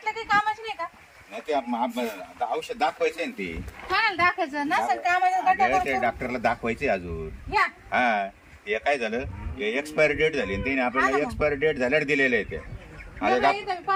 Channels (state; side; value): identical; both; correlation 1.00